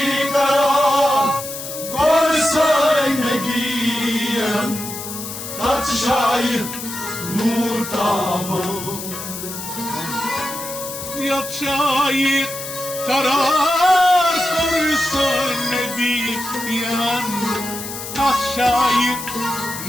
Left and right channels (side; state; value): left; noise; hiss, 9 dB below the sound